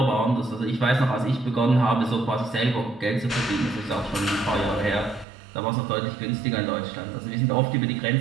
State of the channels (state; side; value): drops out; left; at 5.2 s